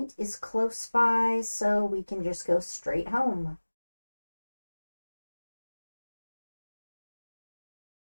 is close by, so we can just go straight home.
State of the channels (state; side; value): inverted; both; correlation -1.00